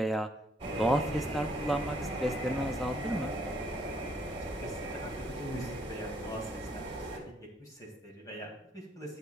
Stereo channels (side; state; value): both; normal; correlation 0.69